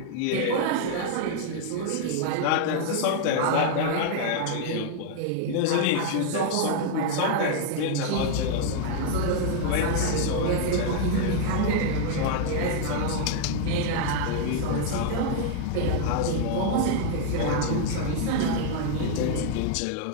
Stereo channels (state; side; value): different; both; correlation 0.00